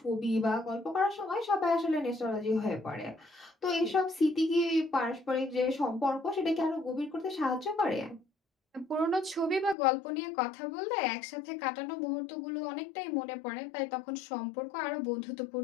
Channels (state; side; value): drops out; right; at 9.8 s